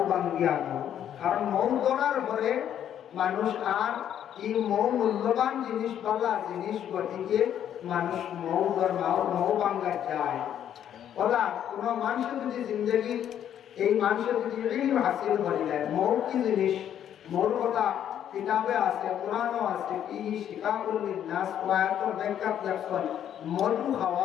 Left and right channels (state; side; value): quieter; right; 10.0 dB